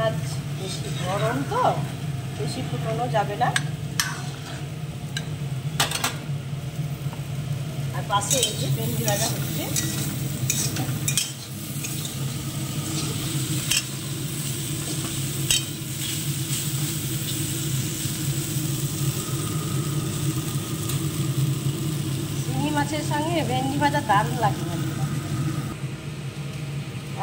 বেশি গরম তো, বেশি ফুটানো যাবে না। আর পাশে এই যে ভেন্ডি ভাজা হচ্ছে। শিঙি মাছের সঙ্গে ভেন্ডি ভাজা দারুণ লাগে।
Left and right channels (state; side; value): identical; both; correlation 1.00